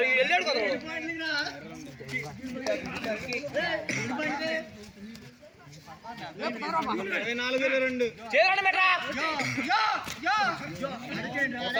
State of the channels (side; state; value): both; identical; correlation 1.00